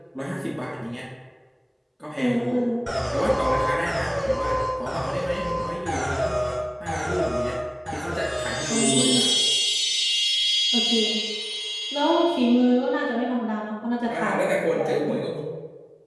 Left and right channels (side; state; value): both; identical; correlation 1.00